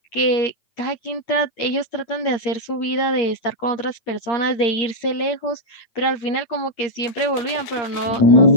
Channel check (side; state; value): right; late; 8.9 ms